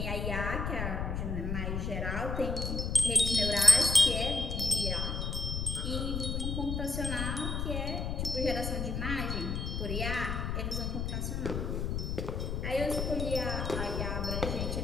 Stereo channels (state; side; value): noise; left; rumble, 2 dB below the sound